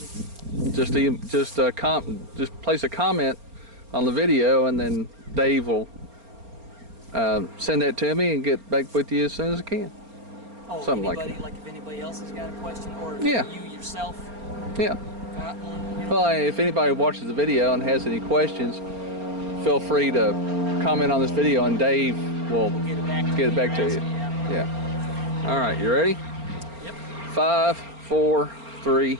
just place a comment on the video, and then Dave will send that to me and get back with you as soon as I can. oh, Something anybody, like that. like if anybody else has got a question, or if Yeah. you yourself Yeah. got one, you know. Well, if anybody watches the video and has any questions, feel free to comment on this video, and Dave will We'll get it back to get it you. back to you. Yeah. All right. You ready? Yep. 5, 4, 3,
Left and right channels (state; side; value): late; left; 4.3 ms